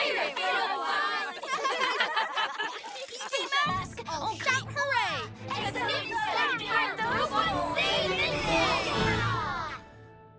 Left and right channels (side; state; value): both; identical; correlation 1.00